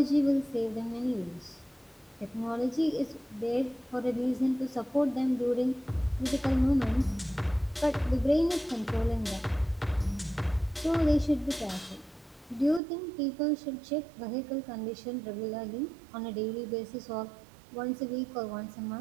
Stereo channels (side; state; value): left; drops out; at 12.8 s